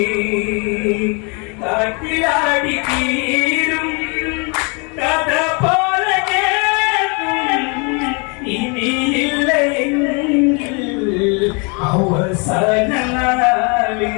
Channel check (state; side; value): quieter; right; 33.1 dB